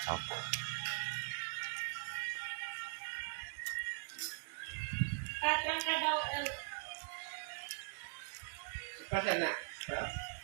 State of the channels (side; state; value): left; quieter; 36.7 dB